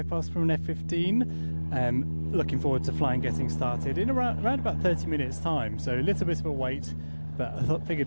past from an F-15. Looking forward to flying getting started in around about 30 minutes time, so a little bit of a wait, but I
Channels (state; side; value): inverted; both; correlation -1.00